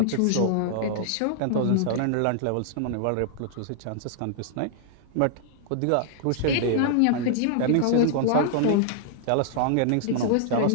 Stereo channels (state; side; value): different; both; correlation -0.01